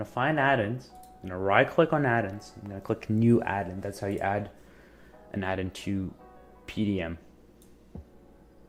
find add-ins. I'm gonna right-click on add-ins. I'm gonna click new add-in. That's how you add an add-in to PDM.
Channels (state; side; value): identical; both; correlation 1.00